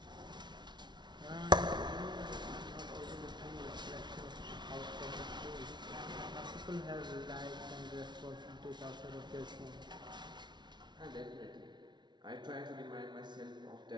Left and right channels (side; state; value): left; late; 0.21 ms